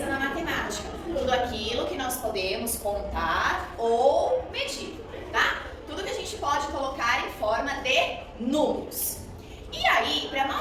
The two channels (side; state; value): both; identical; correlation 1.00